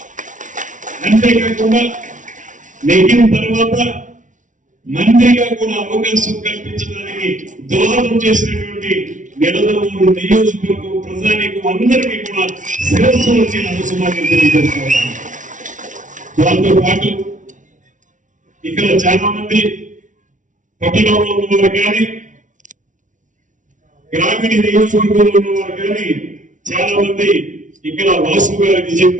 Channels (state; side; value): late; left; 0.37 ms